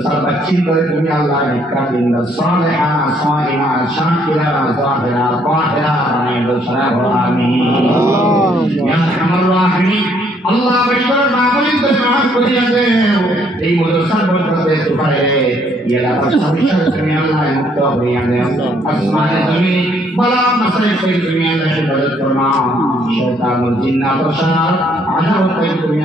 বাচ্চি করে তুমি আল্লাহ একটা দিন সালেহা সাইমা শাকিরা জাহিরা তাহিরা বানিয়ে দাও সারা আমিন ইয়া আরহামার রাহিমিন আল্লাহ বশর মাহফিল তে মাফ করিয়া দেও এই মাদ্রাসার বরকতে সুপারে ইয়ালা পাশাপাশি তুমি আল্লাহ মুক্ত করিয়া দেও আসমানে জমিন বলা মাসে কই তুমি আল্লাহ হিফাজত ফরমাও শয়তান ও জিন্নাত ও শার আযাব কই তুমি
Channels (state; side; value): normal; both; correlation 0.67